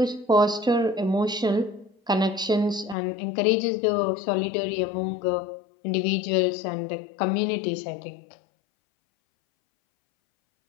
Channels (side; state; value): right; drops out; at 3.0 s